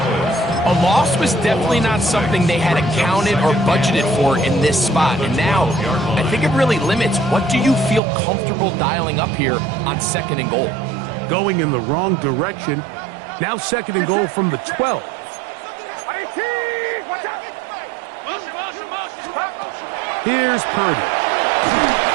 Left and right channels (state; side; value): drops out; left; at 8.0 s